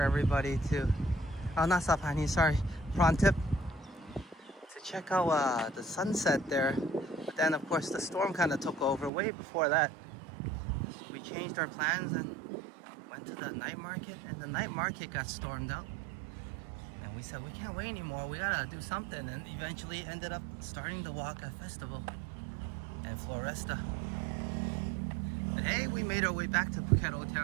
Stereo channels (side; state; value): left; drops out; at 9.1 s